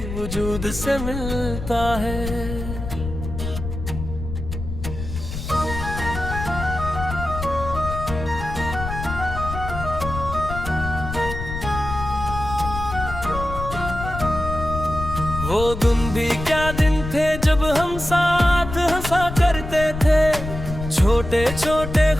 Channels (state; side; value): noise; left; rumble, 7 dB below the sound